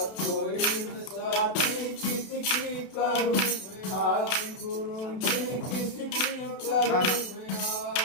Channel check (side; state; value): right; late; 32 ms